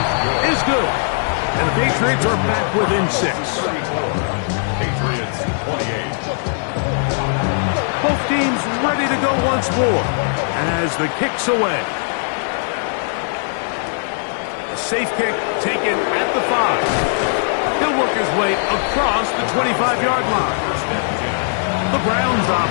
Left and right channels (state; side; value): silent; right; digital silence